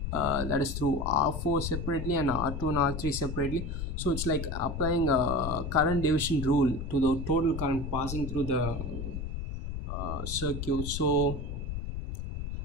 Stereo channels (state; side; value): noise; left; rumble, 5 dB below the sound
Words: that is through R4 separately and R2 and R3 separately. So it's like applying a current division rule to the total current passing through the circuit. So